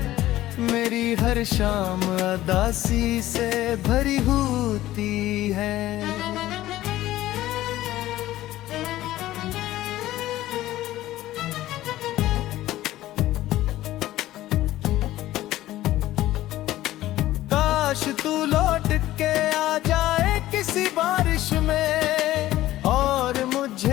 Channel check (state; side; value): quieter; right; 15.2 dB